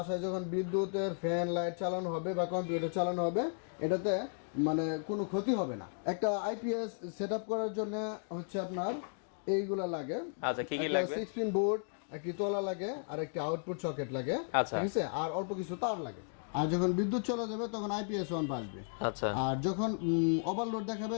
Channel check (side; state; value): right; silent; digital silence